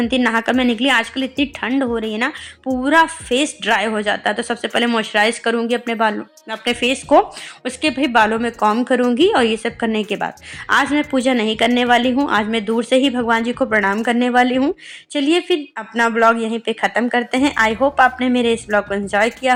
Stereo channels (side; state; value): both; identical; correlation 1.00